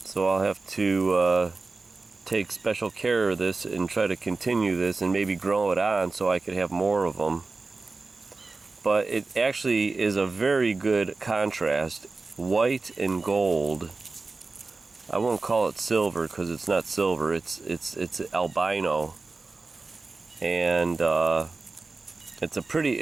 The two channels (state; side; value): quieter; left; 3.8 dB